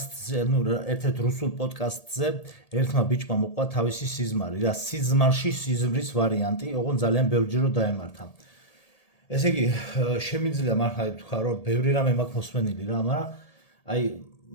ერთ-ერთ რუსულ პოდკასტზე ერთმა ბიჭმა მოყვა თავისი სიზმარი, რა სიზმარში სიზმრის ვარიანტი, ოღონდ ძალიან ბევრჯერ დაემართა. ესე იგი, შემიძლია მართლა ვთქვა, რომ ბევრი რამე მაქვს მოსმენილი რა, მაგრამ აი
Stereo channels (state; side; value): late; right; 1.8 ms